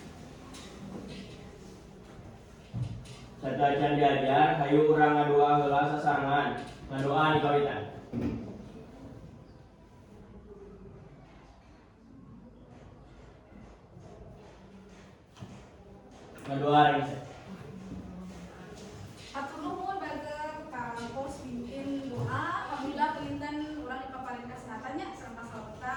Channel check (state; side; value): identical; both; correlation 1.00